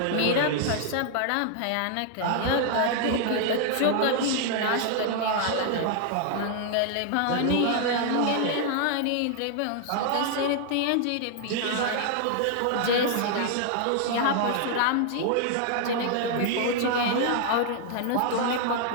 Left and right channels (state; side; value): different; both; correlation 0.00